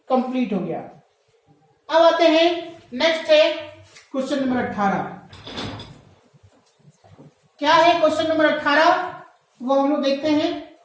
कंप्लीट हो गया। अब आते हैं नेक्स्ट है क्वेश्चन नंबर 18। क्या है क्वेश्चन नंबर 18, वो हम लोग देखते हैं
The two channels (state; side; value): identical; both; correlation 1.00